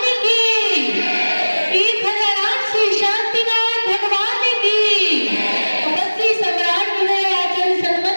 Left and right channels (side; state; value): both; inverted; correlation -1.00